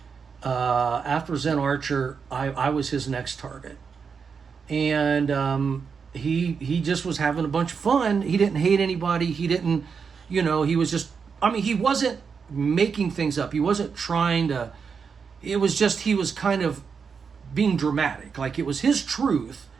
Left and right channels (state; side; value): quieter; left; 5.9 dB